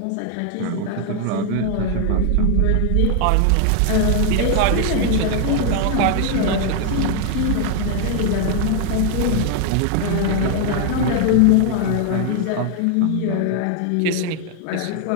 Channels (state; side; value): different; both; correlation 0.00